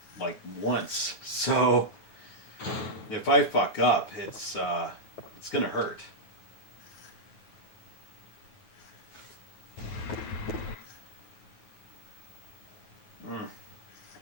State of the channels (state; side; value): late; right; 9.3 ms